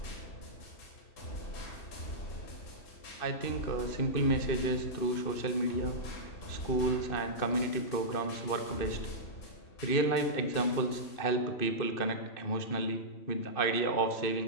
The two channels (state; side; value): late; right; 2.6 ms